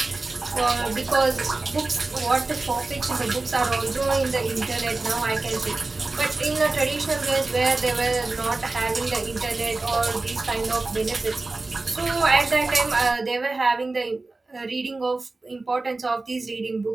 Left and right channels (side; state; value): left; quieter; 3.4 dB